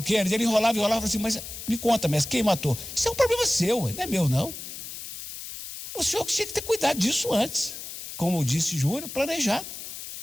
Kennedy? Ele enrolava e falava assim, mas me conta, mestre, quem matou? Isso é um problema seu, não é meu, não. O senhor tinha que ter cuidado disso antes, como disse Júnior, planejado.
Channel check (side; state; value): left; noise; hiss, 10 dB below the sound